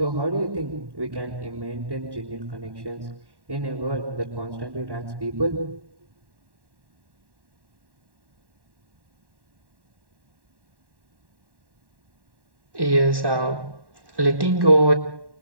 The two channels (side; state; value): left; late; 1.1 ms